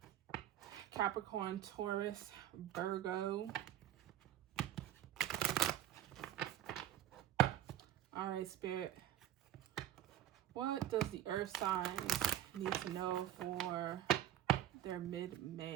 Capricorn, Taurus, Virgo. All right, Spirit. What does the Earth signs need to know for their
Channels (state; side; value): quieter; left; 11.8 dB